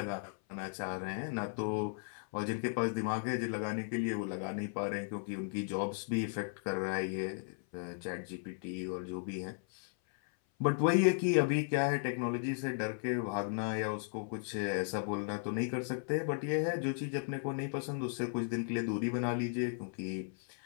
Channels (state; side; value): silent; right; 54 dB below the other